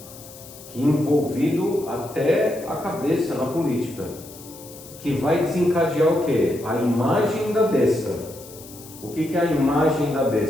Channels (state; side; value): noise; left; hiss, 18 dB below the sound